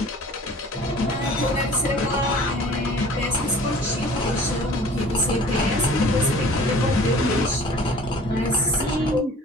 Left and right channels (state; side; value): normal; both; correlation 0.47